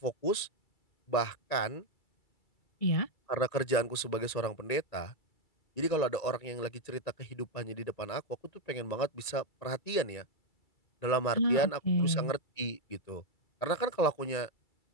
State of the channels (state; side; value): late; right; 2.3 ms